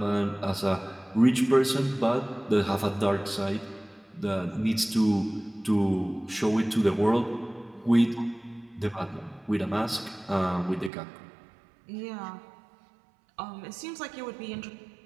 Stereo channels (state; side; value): drops out; left; at 10.9 s